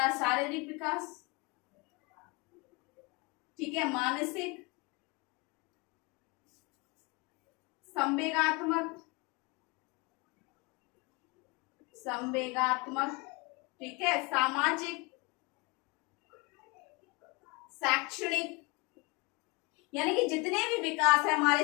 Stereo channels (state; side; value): quieter; right; 27.8 dB